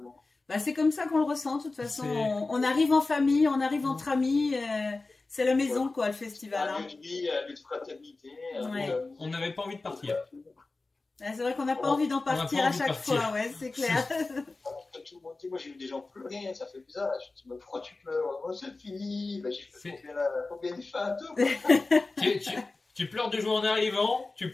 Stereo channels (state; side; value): quieter; right; 3.5 dB